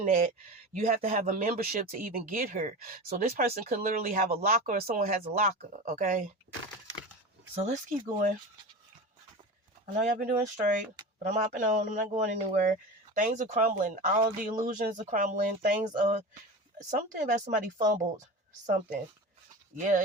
at, you have to have a membership to even get her. So this person could literally have a locker, or someone has a locker. Okay. So let's keep going. I know y'all been doing straight, but I'm hopping on. I'm not going anywhere. Things are crumbling. All the illusions are crumbling. Things are... Something about somebody fumbled something. Yeah,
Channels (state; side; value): normal; both; correlation 0.29